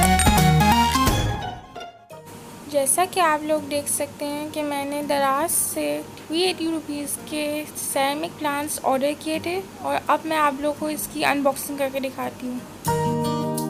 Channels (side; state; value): both; identical; correlation 1.00